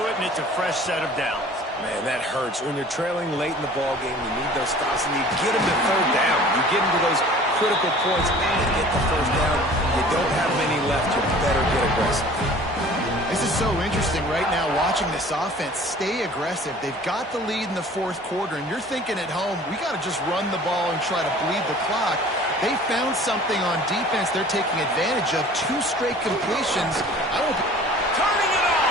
it, and it's a fresh set of downs. Man, that hurts. When you're trailing late in the ball game, you need those stops, and you get them to third down. You get into those critical points and get the first down. You don't have many left. You better get aggressive. This is so interesting right now watching this offense stay aggressive. They've got the lead in the 4th quarter, and you're thinking at home, we got to just run the ball and try to bleed the clock. They found something on defense they're taking advantage of. 2 straight completions. Turning it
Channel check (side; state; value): both; normal; correlation 0.47